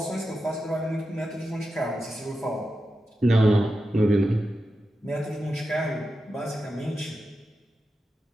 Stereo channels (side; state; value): both; normal; correlation 0.90